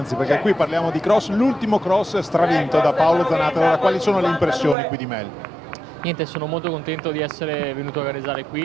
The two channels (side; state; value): left; drops out; at 4.8 s